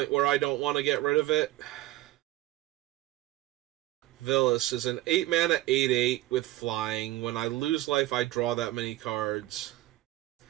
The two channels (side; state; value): left; quieter; 16.5 dB